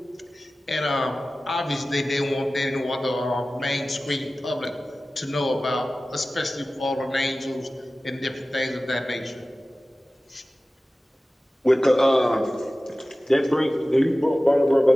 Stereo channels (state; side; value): normal; both; correlation 0.96